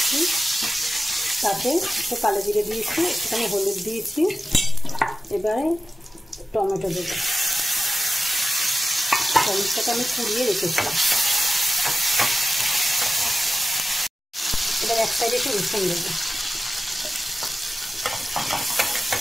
তাতে একটু কালো জিরে দিয়েছি, একটুখানি হলুদ দিয়েছি। এবারে টমেটো দেবো। টমেটোটাকে আমি কুড়িয়ে রেখেছি। এবার এক সাইডে একটু রসুন দেবো।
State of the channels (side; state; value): both; normal; correlation 0.93